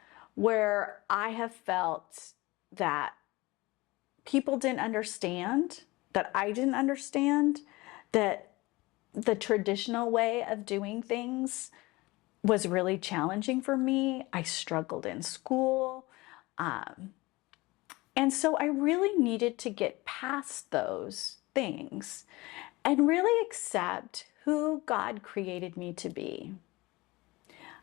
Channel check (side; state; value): right; quieter; 21.7 dB